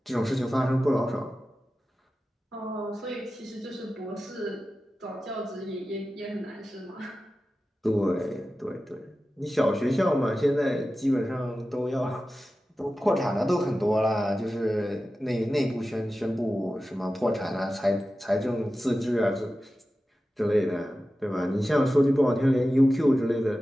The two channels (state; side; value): normal; both; correlation 0.94